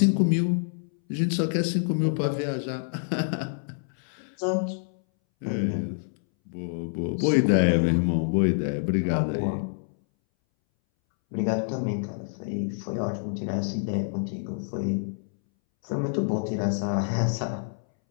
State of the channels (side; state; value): right; silent; 60 dB below the other